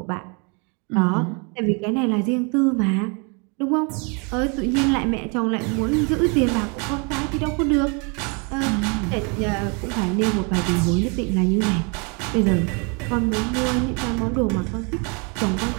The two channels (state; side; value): quieter; left; 33.6 dB